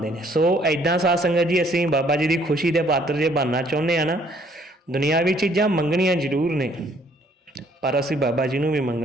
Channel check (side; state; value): both; normal; correlation 0.63